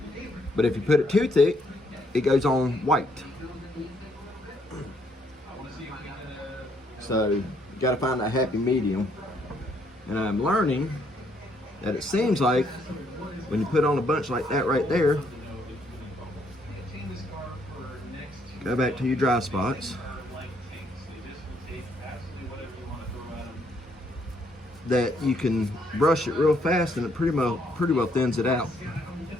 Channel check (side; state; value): both; normal; correlation 0.70